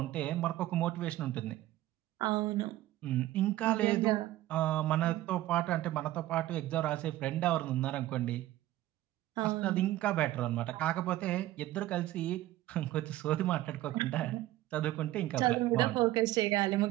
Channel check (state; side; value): quieter; left; 15.4 dB